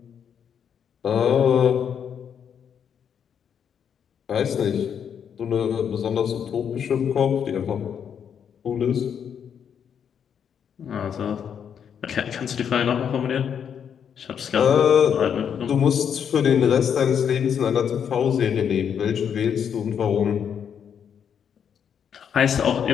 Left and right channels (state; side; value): quieter; right; 7.9 dB